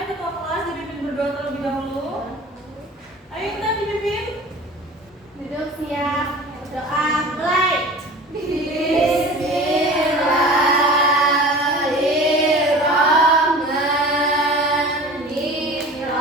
ketua kelas dipimpin berdoa terlebih dahulu. Ayo Intan dipimpin. Duduk siap. Doa mulai.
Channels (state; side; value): normal; both; correlation 0.39